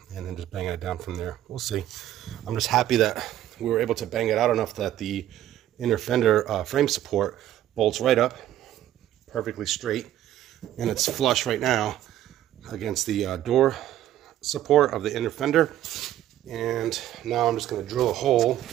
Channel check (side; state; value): left; quieter; 12.7 dB